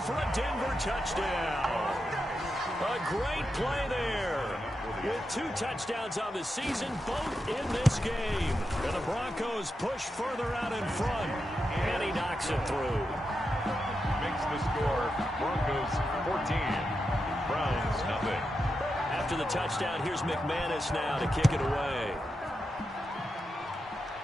a Denver touchdown. A great play there. With 2 touchdowns on the season, both in this game. And the Broncos push further out in front. And he knocks it through. Makes the score Broncos 14, Browns nothing. After the touchdown, here's McManus now to kick it away.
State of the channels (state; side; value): normal; both; correlation 0.87